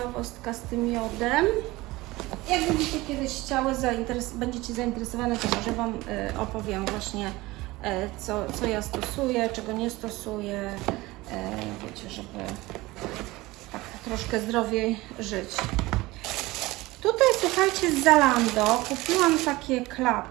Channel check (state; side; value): quieter; left; 20.1 dB